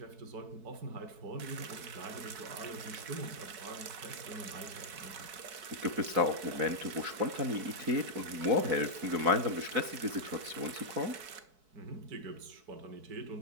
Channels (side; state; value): left; late; 4.6 ms